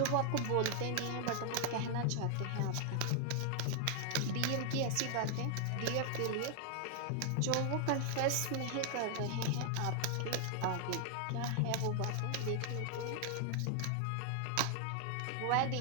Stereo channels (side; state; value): both; different; correlation 0.00